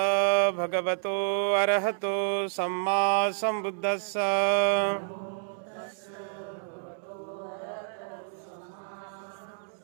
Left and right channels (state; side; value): silent; left; digital silence